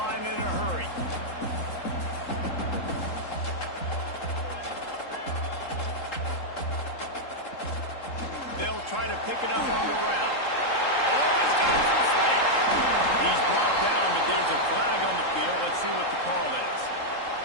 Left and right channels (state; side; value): late; right; 3.8 ms